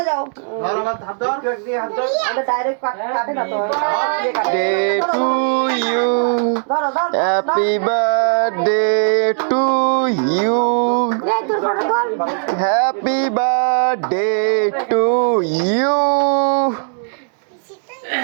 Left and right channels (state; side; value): silent; left; digital silence